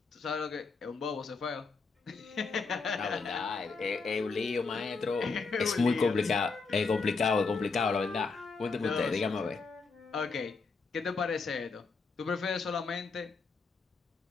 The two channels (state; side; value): quieter; right; 4.5 dB